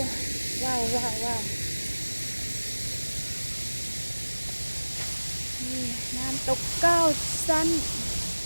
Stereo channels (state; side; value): inverted; both; correlation -1.00